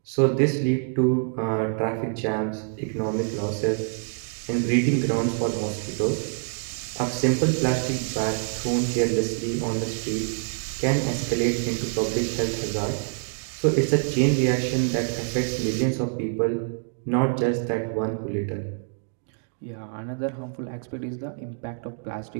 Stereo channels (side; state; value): left; silent; 61 dB below the other